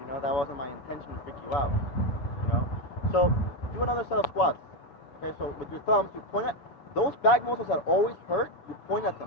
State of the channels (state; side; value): late; right; 7.5 ms